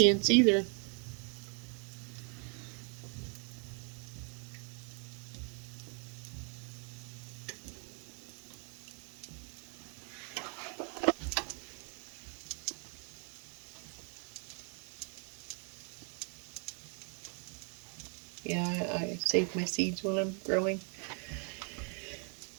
either. Yeah, I save my seeds when I'm growing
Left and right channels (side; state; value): left; quieter; 38.8 dB